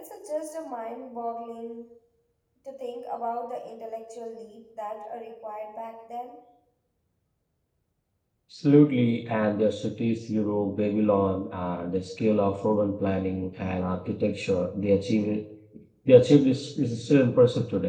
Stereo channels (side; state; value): both; identical; correlation 1.00